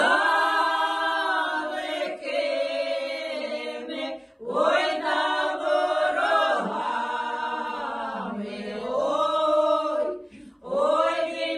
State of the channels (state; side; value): identical; both; correlation 1.00